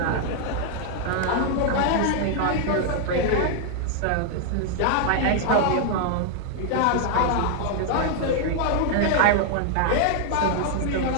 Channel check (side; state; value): both; different; correlation 0.00